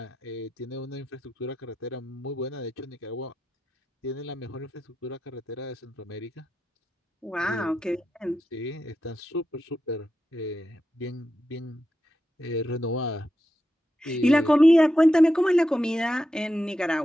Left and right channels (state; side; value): normal; both; correlation 0.88